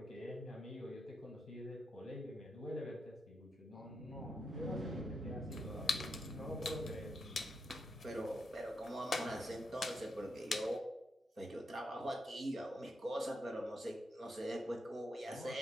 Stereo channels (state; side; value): normal; both; correlation 0.83